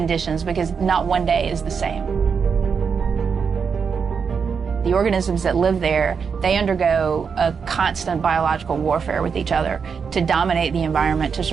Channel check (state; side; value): quieter; left; 6.1 dB